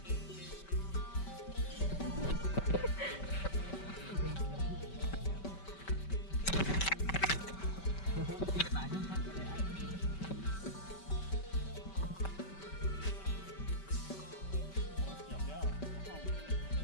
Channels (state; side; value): late; right; 5.2 ms